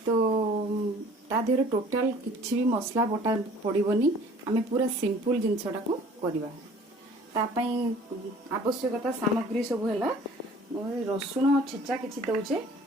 तो ता देहरे टोटाल किसी भी मसला बटा पड़ोनी आम पूरा सिंपल जिनसटा को करवा। आवश्यकता सामग्री सब है रसुण छेचा किसी दौचे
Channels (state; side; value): normal; both; correlation 0.51